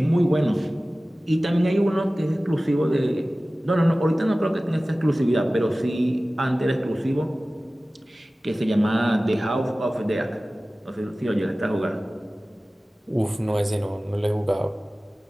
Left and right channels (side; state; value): both; normal; correlation 0.97